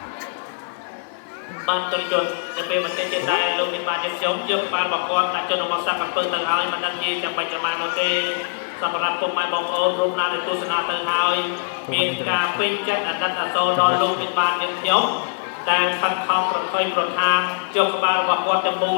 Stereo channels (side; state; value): right; silent; 61 dB below the other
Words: បានទុនជនទៅពេលមិនទេទៀតដែរលោកមានបានខ្ញុំយកក្បាលរបស់គាត់ដាក់ចូលក្នុងសាក់ក្រពើទៅហើយមិនដឹងជាចាំបាច់ប្រមាណនោះទេសម្រាប់ពុកម៉ែបងប្អូនរូបណាដែលទស្សនាទៅហើយមានការពេញចិត្តអាណិតអាសូរដល់លោកមានបានខ្ញុំដែលខិតខំប្រថុយប្រថានយកក្បាលរបស់គាត់ទៅមូល